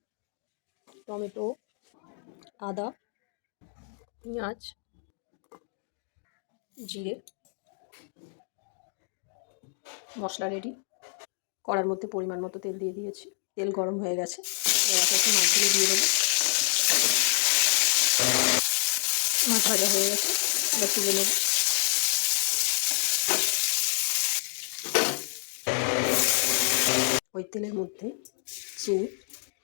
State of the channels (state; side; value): silent; right; 59 dB below the other